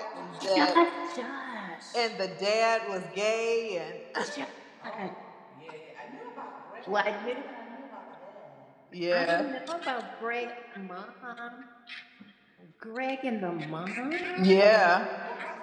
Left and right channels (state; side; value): identical; both; correlation 1.00